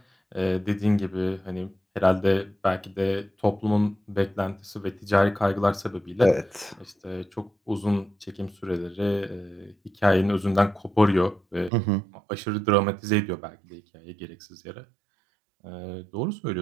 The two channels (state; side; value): drops out; left; at 11.7 s